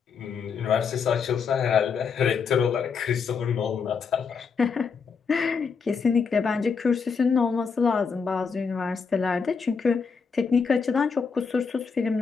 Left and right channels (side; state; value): right; quieter; 5.7 dB